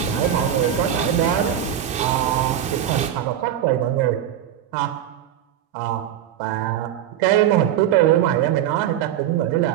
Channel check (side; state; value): left; quieter; 10.6 dB